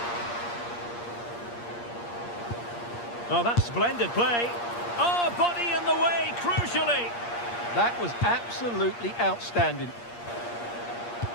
Oh, that's splendid play. Oh, body in the way, crucially. That was absolutely outstanding.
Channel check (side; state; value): right; late; 8.5 ms